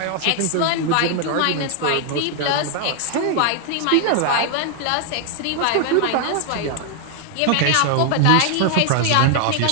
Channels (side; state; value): both; different; correlation 0.00